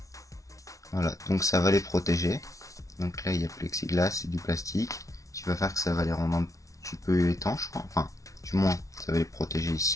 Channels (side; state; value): right; late; 0.16 ms